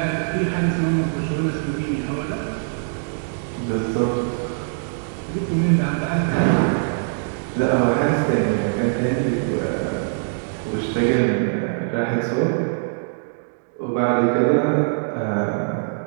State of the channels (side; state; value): left; silent; digital silence